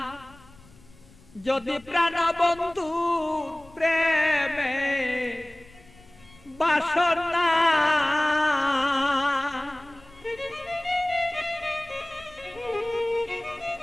যদি প্রাণ বন্ধু প্রেমে বাসনা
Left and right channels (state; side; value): noise; left; rumble, 25 dB below the sound